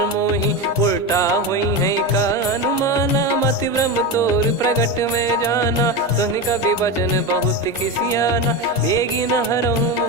मोहि। उल्टा हुई है का अनुमाना मति भ्रम तोर प्रगट में जाना। सुन कवि वचन बहुत खिसियाना बेगी न हरहु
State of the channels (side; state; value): both; normal; correlation 0.18